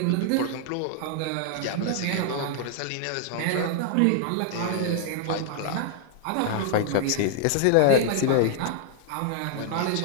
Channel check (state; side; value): different; both; correlation 0.00